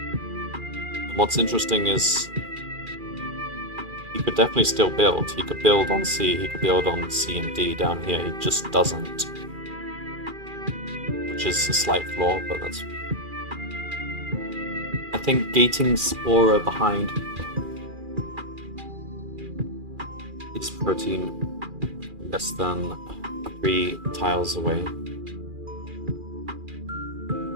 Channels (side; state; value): left; late; 2.4 ms